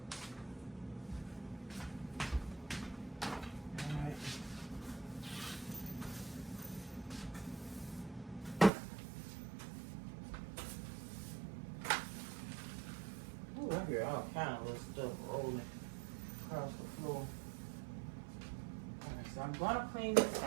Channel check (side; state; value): left; drops out; at 8.7 s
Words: I hear all kind of little stuff rolling across the floor. Alright, so I'm gonna clean this